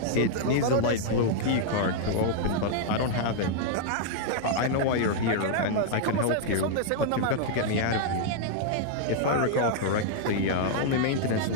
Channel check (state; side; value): different; both; correlation -0.01